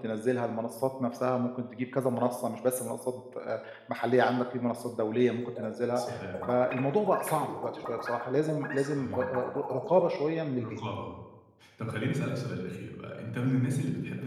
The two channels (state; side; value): identical; both; correlation 1.00